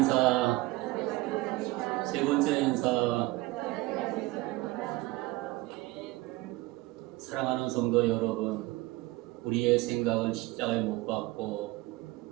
세 번째 인사. 사랑하는 성도 여러분, 우리의 생각은 십자가에 못 박고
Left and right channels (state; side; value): quieter; left; 19.8 dB